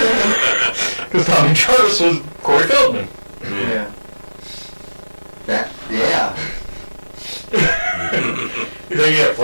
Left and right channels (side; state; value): both; inverted; correlation -1.00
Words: Because Tommy Jarvis was Corey Feldman. Yeah. Yeah. You think you have